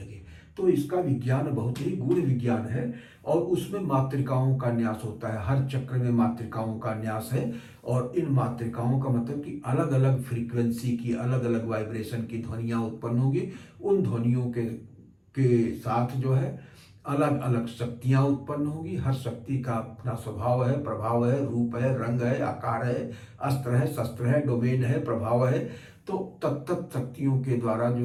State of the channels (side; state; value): both; identical; correlation 1.00